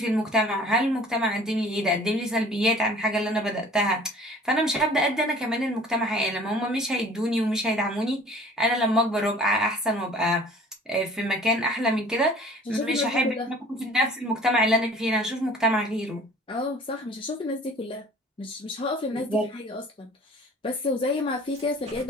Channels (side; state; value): both; normal; correlation 0.49